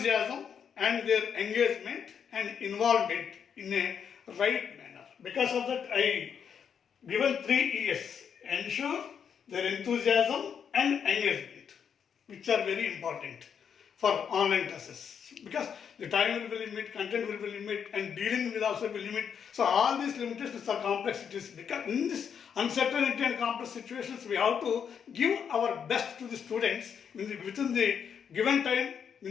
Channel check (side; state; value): right; quieter; 7.4 dB